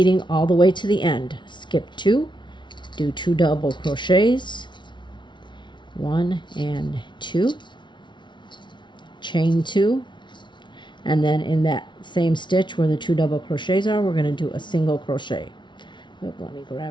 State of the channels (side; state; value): right; late; 0.23 ms